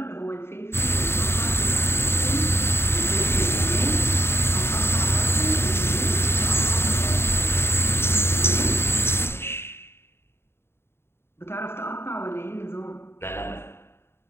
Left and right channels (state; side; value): late; right; 0.12 ms